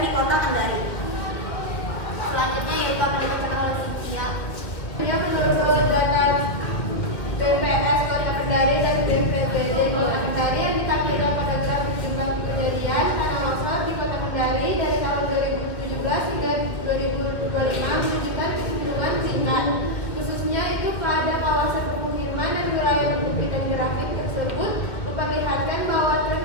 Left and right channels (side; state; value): right; late; 2.0 ms